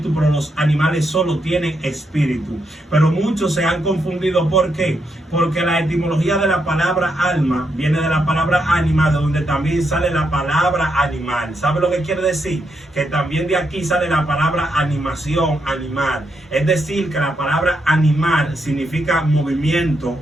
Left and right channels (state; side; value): normal; both; correlation 0.80